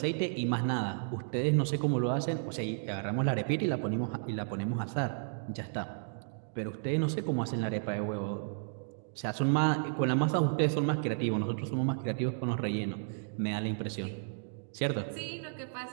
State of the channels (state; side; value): silent; left; digital silence